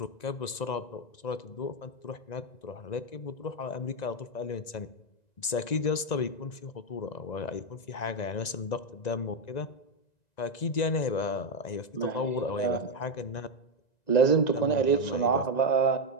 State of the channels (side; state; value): right; late; 1.9 ms